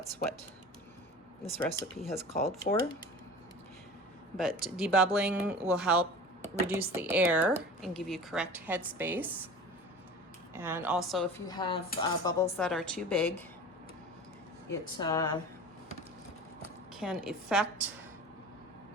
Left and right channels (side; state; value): both; normal; correlation 0.37